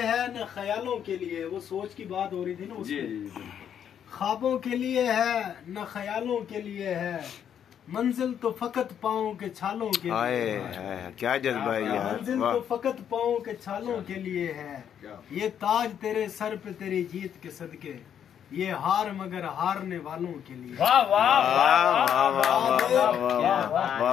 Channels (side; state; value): right; quieter; 8.9 dB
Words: है न ख्यालों के लिए, वो सोच की बात हो रही थी ना उसमें। ख्वाबों के लिए है न ख्यालों के लिए है, मंजिल तो फकत पाँव के छालों के लिए है। क्या जज्बा है यार। मंजिल तो फकत पाँव के छालों के लिए है। ये ताज तेरे सर पे तेरी जीत के सदके, ये हार मगर हारने वालों के लिए। वाह वाह